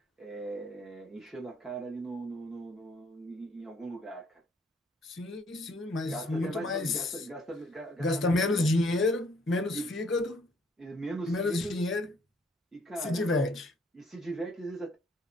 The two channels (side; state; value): both; normal; correlation 0.64